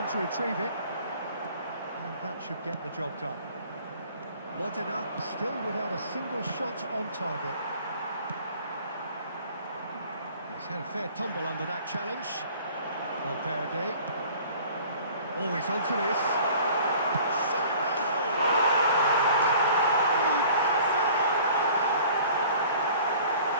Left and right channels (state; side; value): inverted; both; correlation -0.49